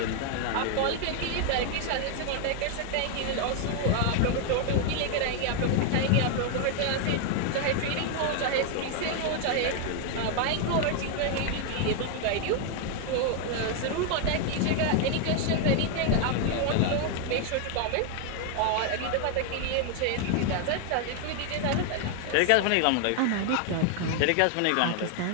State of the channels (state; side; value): different; both; correlation 0.00